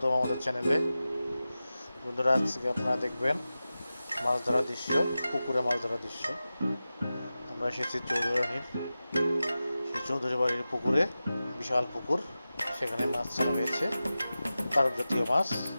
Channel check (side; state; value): both; inverted; correlation -0.95